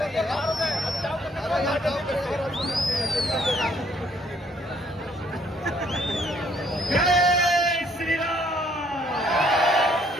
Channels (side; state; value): both; normal; correlation 0.65